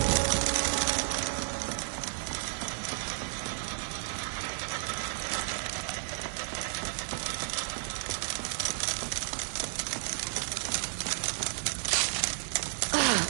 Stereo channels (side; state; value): left; silent; digital silence